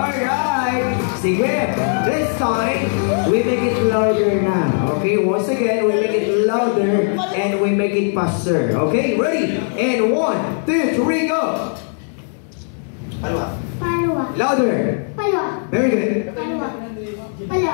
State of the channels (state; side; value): silent; right; 67 dB below the other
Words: Sige. This time, we make it louder na. Okay, once again, we make it louder and we make it faster. Okay, ready? And 1, 2, 3, go! Palwa. Palwa. Louder. Palwa. Very good. Palwa.